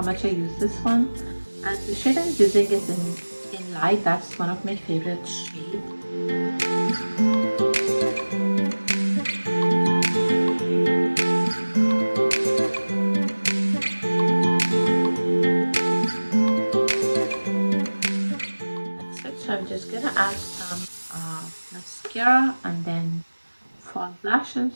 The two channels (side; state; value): both; inverted; correlation -1.00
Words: much I use this one. And the shade I'm using is in light. That's one of my favorite shades. That's it. So I'm just gonna add some mascara and then fall